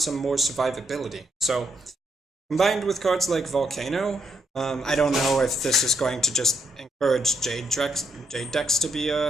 more survivability. So, combined with cards like Volcano, I don't know if this is going to just encourage Jade decks to be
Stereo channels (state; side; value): normal; both; correlation 0.77